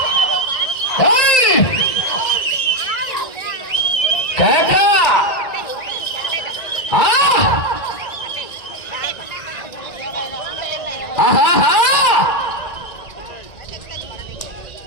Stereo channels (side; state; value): right; late; 1.9 ms